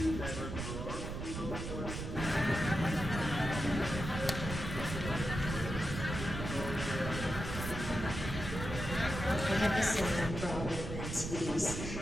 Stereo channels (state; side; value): noise; right; rumble, 5 dB below the sound